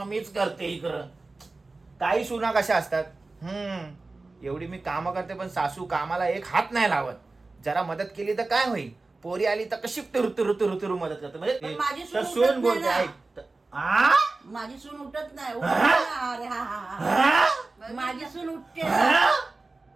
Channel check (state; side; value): quieter; left; 3.4 dB